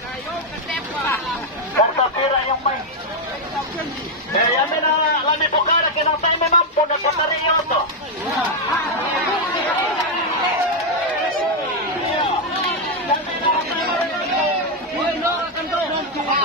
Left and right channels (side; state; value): both; normal; correlation 0.02